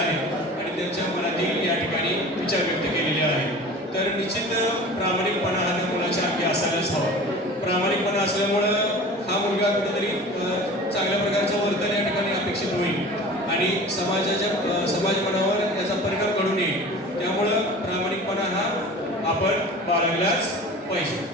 आणि त्यांच्या मनातील या ठिकाणी विचार व्यक्त केलेले आहेत। तर निश्चित प्रामाणिकपणा हा मुलाच्या अंगी असायलाच हवा। प्रामाणिकपणा असल्यामुळं हा मुलगा कुठेतरी चांगल्या प्रकारचं वर्तन या ठिकाणी अपेक्षित होईल आणि समाज मनावर याचा परिणाम घडून येईल। त्यामुळं प्रामाणिकपणा हा आपण बाळगलाच पाहिजे.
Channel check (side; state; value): both; normal; correlation 0.39